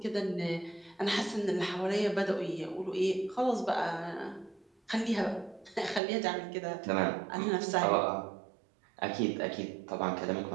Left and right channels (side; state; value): left; drops out; at 6.0 s